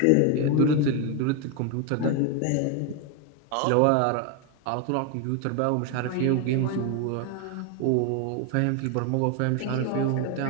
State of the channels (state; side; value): different; both; correlation 0.01